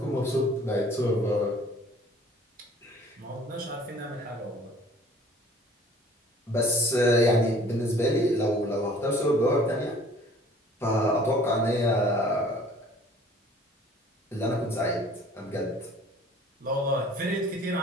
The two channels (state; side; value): normal; both; correlation 0.51